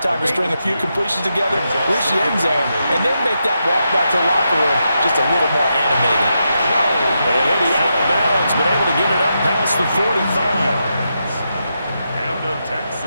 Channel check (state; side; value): inverted; both; correlation -0.85